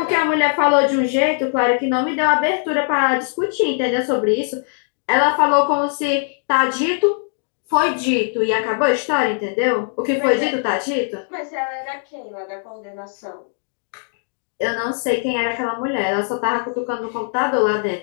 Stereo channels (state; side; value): silent; right; 66 dB below the other